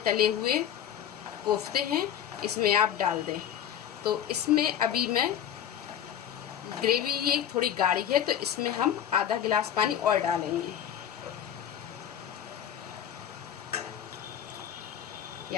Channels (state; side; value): quieter; right; 10.0 dB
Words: तले हुए कोफ्ते हैं इसमें आप डाल दें। तो इसमें अभी मैं ग्रेवी ये थोड़ी गाढ़ी है तो इसमें हम आधा गिलास पानी और डालेंगे। ये